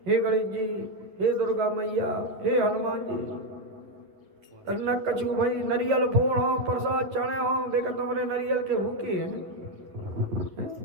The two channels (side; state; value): left; late; 11 ms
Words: हे गणेश जी, हे दुर्गा मैया, हे हनुमान जी, तरना कछु भाई नरियल फोड़ हो, प्रसाद चढ़े हो, बेका तुम्हारे नरियल के भूखे हैं,